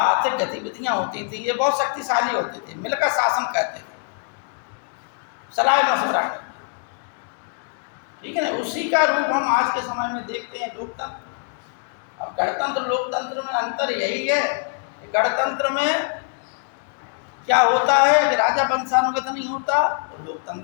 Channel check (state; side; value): silent; right; 55 dB below the other